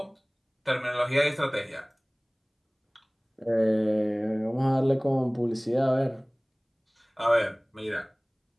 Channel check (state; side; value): identical; both; correlation 1.00